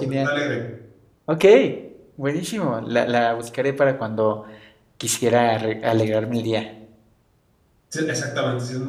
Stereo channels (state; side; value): identical; both; correlation 1.00